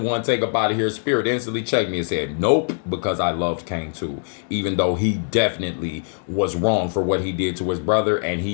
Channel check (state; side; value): silent; right; digital silence